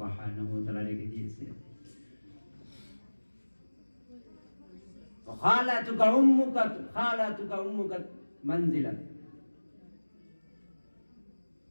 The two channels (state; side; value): inverted; both; correlation -1.00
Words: ওয়া তাআলা রেখে দিয়েছে। খালাতুকা উম্মুকা মানজিলা,